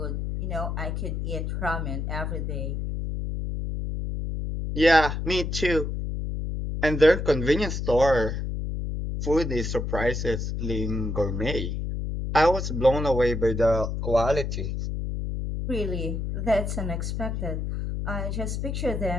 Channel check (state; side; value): noise; left; hum, 3 dB below the sound